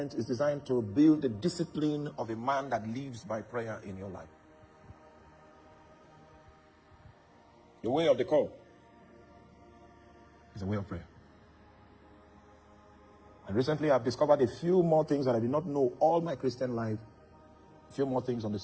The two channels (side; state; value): both; identical; correlation 1.00